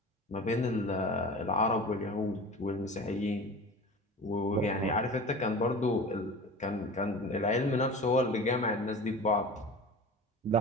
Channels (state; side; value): normal; both; correlation 0.36